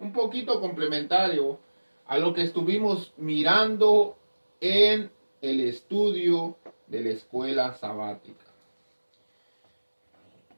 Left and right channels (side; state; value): both; inverted; correlation -1.00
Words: poquito complementario a lo que estuvimos mirando en el estudio de la escuela sabática.